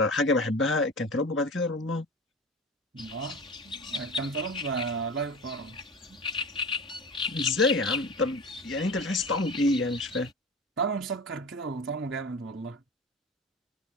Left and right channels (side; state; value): both; normal; correlation 0.32